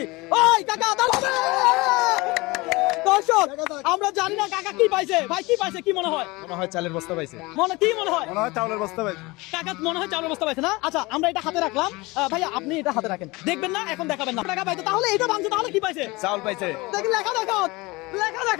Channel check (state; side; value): quieter; right; 23.1 dB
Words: ওই কাকা দাঁড়াবে। দর্শক আমরা জানি না কাকা কি পাইছে। ভাই কি পাইছে কি মনে হয়? মনে হয় চালের বস্তা পাইছে। কি মনে হয়? মনে হয় চালের বস্তা পাইছে। কাকা মনে হয় চাউলের বস্তা পাইছে না? আচ্ছা আমরা এটা হাতে রাখলাম। ভাইয়া আপনি এটা হাতে রাখেন, দেখবেন না এখন দেখাবেন না। টাকা পাইছে তাহলে এটা ভাঙছে, তাহলে কি পাইছে? চাউল পাইছে। দেখি লেখা দেখান, লেখা